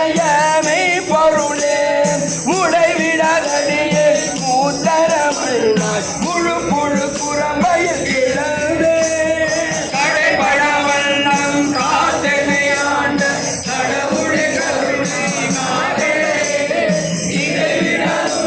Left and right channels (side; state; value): both; identical; correlation 1.00